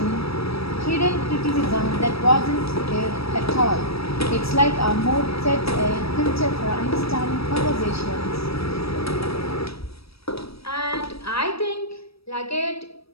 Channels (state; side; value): late; right; 0.77 ms